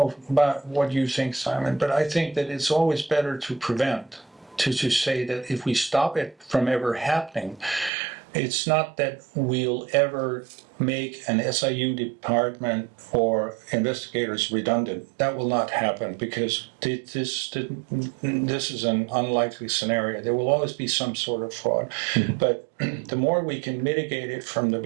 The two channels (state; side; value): drops out; left; at 7.9 s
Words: about what you think, Simon, but I think that it's always better to prevent, to say that if we stop it from ever happening, it's not that we'll ever make an SIU department or investigators redundant. That will not happen, because this is an unlikely scenario. There will always be some sort of fraud. But the more we can mitigate it from the